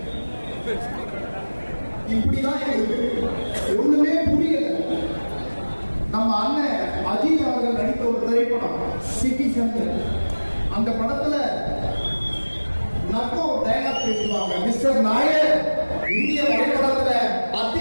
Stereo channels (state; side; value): inverted; both; correlation -1.00